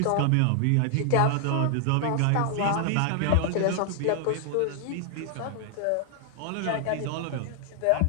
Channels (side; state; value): both; different; correlation 0.00